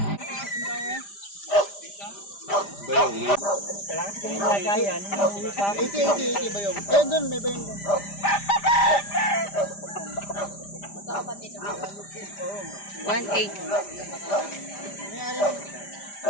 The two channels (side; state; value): right; late; 5.0 ms